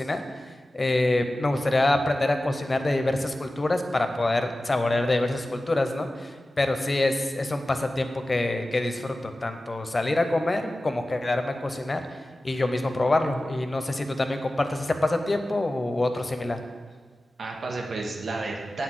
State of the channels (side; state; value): both; normal; correlation 0.95